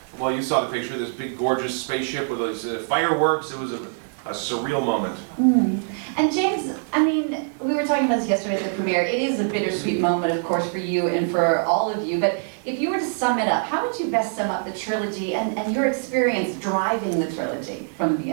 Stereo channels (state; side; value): silent; left; 63 dB below the other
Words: Well, you saw the picture. This big, gorgeous spaceship with those fireworks. It was a surreal moment. And James, I mean, we were talking about this yesterday at the premiere. It is a bittersweet moment, of course, for you and for all of you. But if you were to sum it up, how would you best sum up the trilogy and your experience driving the trilogy from the